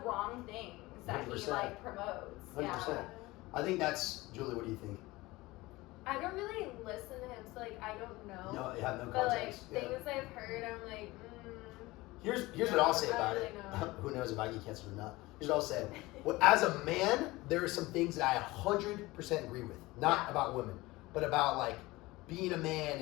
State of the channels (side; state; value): right; quieter; 20.4 dB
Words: things that he 100%. like promotes. 100%. Yeah. I think that's Julie. What do you think? I don't really listen to him, so like I don't know. No, you have no But like context. Yeah. things I've heard, I'm like, Here's what I'll say I about don't it. really know. Who knows if I get cancer or not? Here's what I'll say. Well, as a man, there are some things that I 100% agree with. Not Yeah. about women, but about like being a man